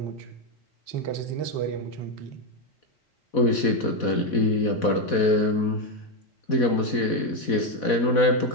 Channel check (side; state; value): right; late; 4.1 ms